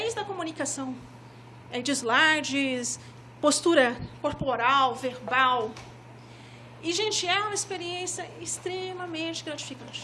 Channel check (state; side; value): identical; both; correlation 1.00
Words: a comunicação de slides, postura corporal, verbal. E, gente, é uma experiência extremamente